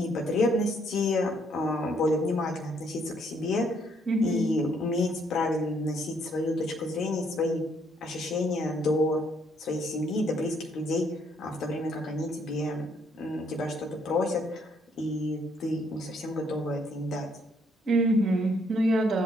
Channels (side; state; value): both; normal; correlation 0.69